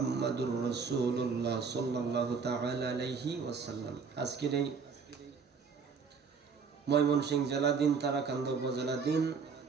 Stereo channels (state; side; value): quieter; left; 5.5 dB